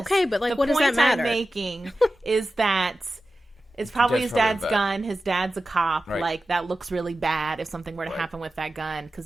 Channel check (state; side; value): normal; both; correlation 0.94